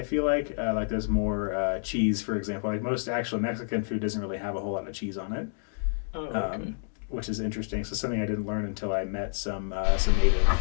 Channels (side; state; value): right; silent; digital silence